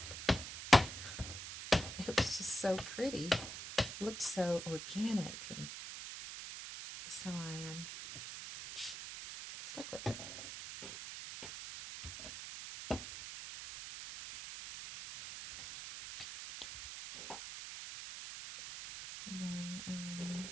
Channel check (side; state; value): right; noise; hiss, 8 dB below the sound